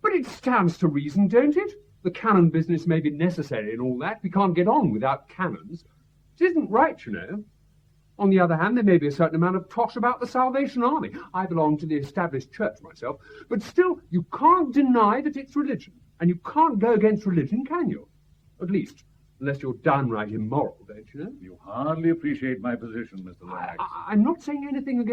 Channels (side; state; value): both; identical; correlation 1.00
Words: but it stands to reason, don't it? The canon business may be necessary and all that. We can't get on without canons. It isn't right, you know. On the other hand, there may be a certain amount of tosh about the Salvation Army. I belong to the established church myself, but still, you can't deny that it's religion. And you can't go against religion, can you? At least, unless you're downright immoral, don't you know? You hardly appreciate my position, Mr. Lomax. I'm not saying anything